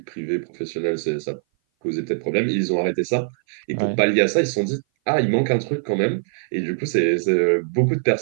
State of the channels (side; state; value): left; silent; 58 dB below the other